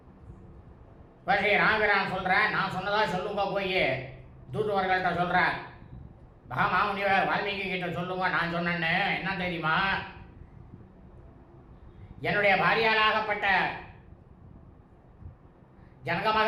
இப்போ ஸ்ரீ ராமபிரான் சொல்கிறேன், நான் சொன்னதா சொல்லுங்க, போய் தூதுவர்கள்ட்ட சொல்கிறேன், மகாமுனிவர் வால்மீகி கிட்ட சொல்லுங்க நான் சொன்னேன்னு. என்ன தெரியுமா, என்னுடைய பாரியாளாகப்பட்ட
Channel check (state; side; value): identical; both; correlation 1.00